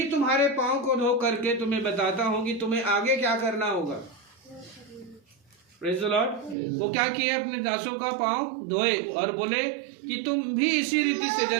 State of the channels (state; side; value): drops out; left; at 6.6 s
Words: तुम्हारे पाँव को धो करके तुम्हें बताता हूँ कि तुम्हें आगे क्या करना होगा, प्रेज द लॉर्ड। वो क्या किए, अपने दासों का पाँव धोए और बोले कि तुम भी इसी रीति से